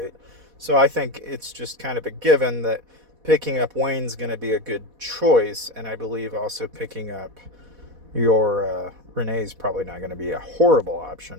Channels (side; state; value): left; late; 4.1 ms